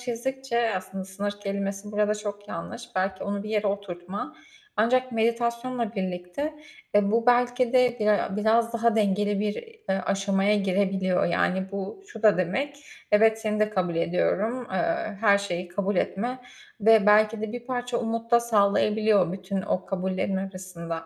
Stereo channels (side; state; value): both; identical; correlation 1.00